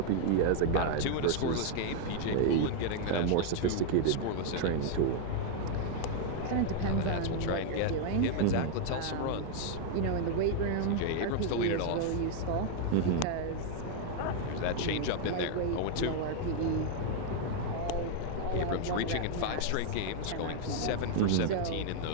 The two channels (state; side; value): different; both; correlation 0.00